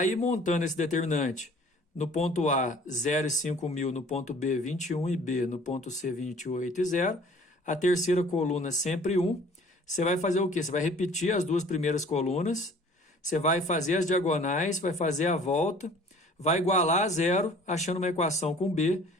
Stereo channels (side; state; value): both; normal; correlation 0.51